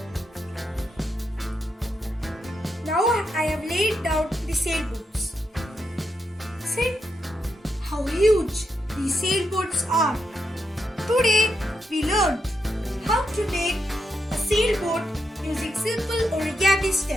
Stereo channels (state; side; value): normal; both; correlation 0.83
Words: Now I have laid down the sailboats. See how huge these sailboats are. Today we learned how to make a sailboat using simple origami